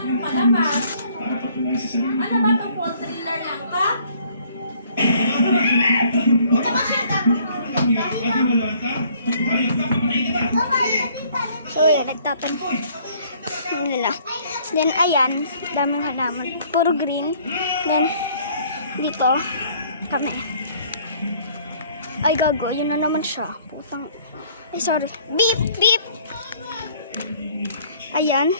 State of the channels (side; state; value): both; inverted; correlation -0.59